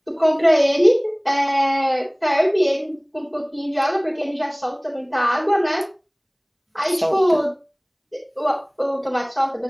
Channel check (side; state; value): both; identical; correlation 1.00